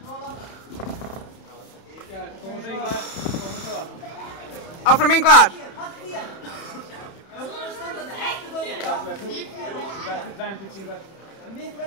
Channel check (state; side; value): late; right; 31 ms